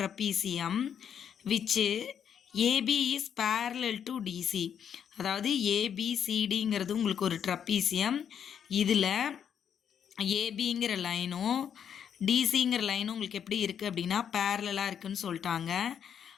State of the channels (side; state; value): right; quieter; 8.4 dB